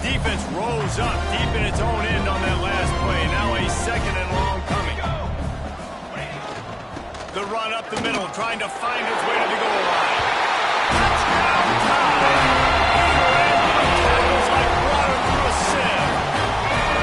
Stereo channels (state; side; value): identical; both; correlation 1.00